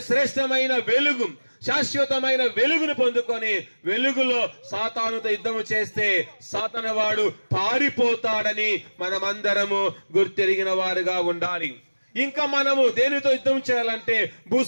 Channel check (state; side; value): inverted; both; correlation -1.00